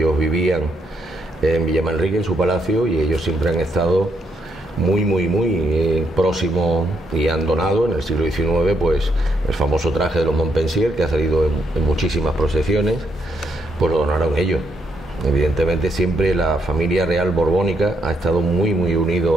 vivían en Villamanrique, en su palacio, y ellos siempre han estado muy próximos, y han donado en el siglo XIX pues el famoso traje de los Montpensier, que ha salido en muchísimas procesiones, pues lo donaron ellos. Evidentemente siempre la familia real borbónica ha estado muy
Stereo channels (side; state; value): both; normal; correlation 0.76